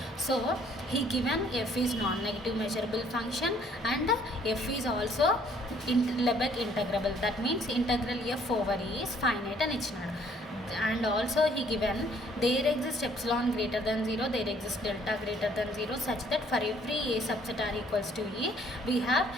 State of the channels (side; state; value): both; normal; correlation 0.62